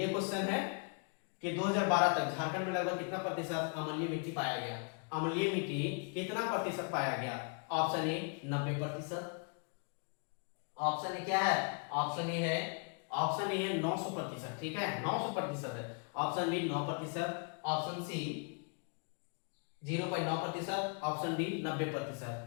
क्वेश्चन है कि 2012 तक झारखंड में लगभग कितना प्रतिशत अम्लीय मिट्टी पाया गया, अम्लीय मिट्टी कितना प्रतिशत पाया गया। ऑप्शन ए 90%, ऑप्शन ए क्या है, ऑप्शन ए है, ऑप्शन ए है 900%। ठीक है, 900% है। Option B 9%, option C 0.9%, option D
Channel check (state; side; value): quieter; right; 38.9 dB